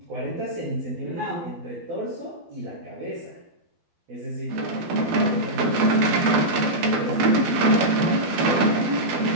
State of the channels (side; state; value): left; late; 12 ms